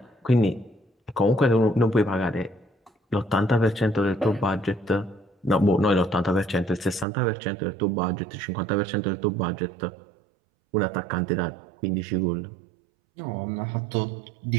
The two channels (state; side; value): drops out; left; at 7.1 s